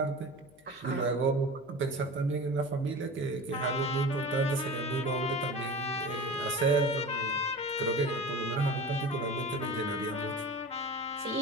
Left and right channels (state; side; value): noise; left; hum, 28 dB below the sound